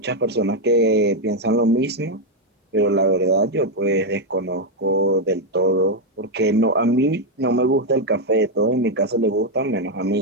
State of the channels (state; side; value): normal; both; correlation 0.02